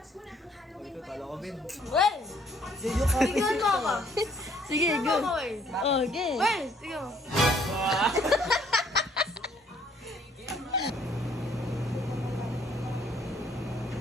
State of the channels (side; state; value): both; normal; correlation 0.63